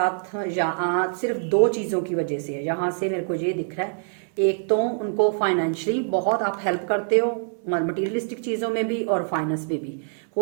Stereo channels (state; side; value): silent; left; 62 dB below the other